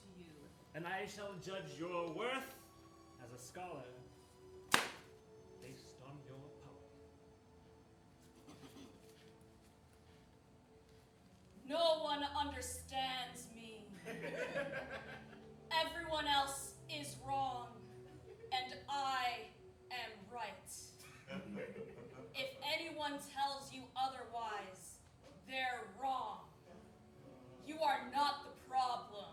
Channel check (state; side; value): identical; both; correlation 1.00